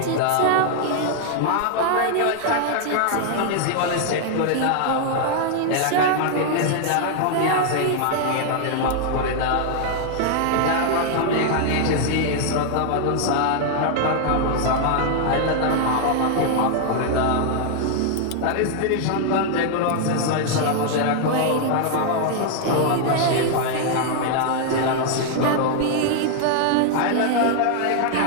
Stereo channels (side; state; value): both; different; correlation 0.00